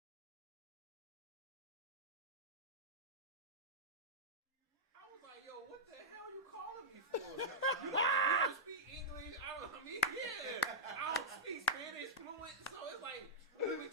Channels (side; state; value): both; normal; correlation -0.09